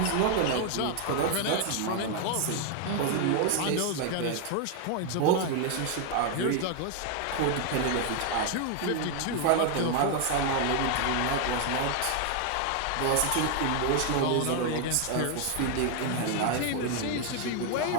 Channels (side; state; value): both; different; correlation 0.01